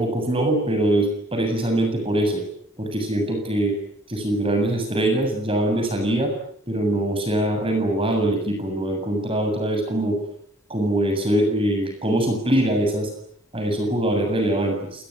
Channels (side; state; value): both; normal; correlation 0.59